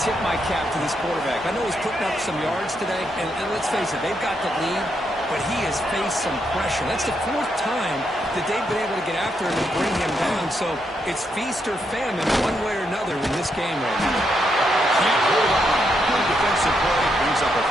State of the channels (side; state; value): both; normal; correlation 0.79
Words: my cap to this quarterback. I know he's putting up some yards today, and let's face it, they've got the lead, but he has faced some pressure. That's the 4th time that they've been able to get after him and bring him down, so it's feast or famine one way or another in this game right now. Can't hold on. Good defensive play, brings up a